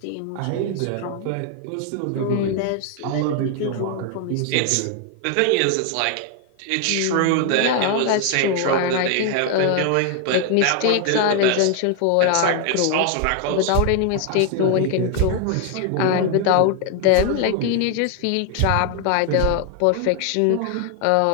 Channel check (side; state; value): both; different; correlation 0.00